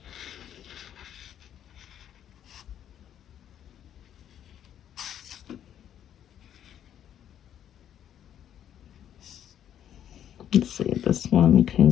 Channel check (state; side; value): quieter; right; 10.1 dB